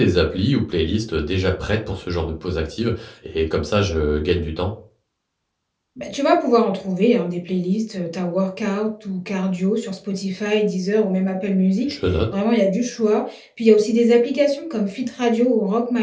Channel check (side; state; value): both; identical; correlation 1.00